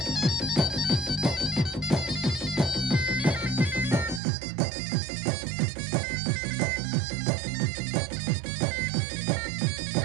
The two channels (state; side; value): drops out; left; at 4.2 s